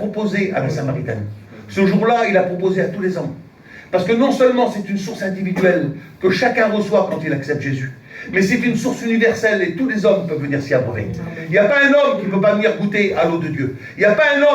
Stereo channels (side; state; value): both; identical; correlation 1.00